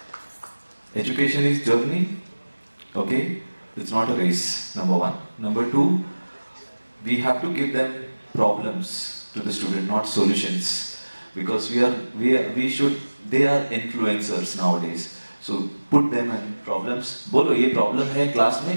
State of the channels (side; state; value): both; inverted; correlation -1.00